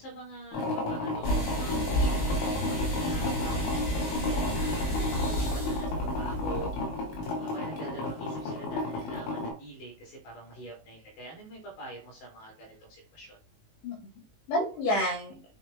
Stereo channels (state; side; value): late; right; 19 ms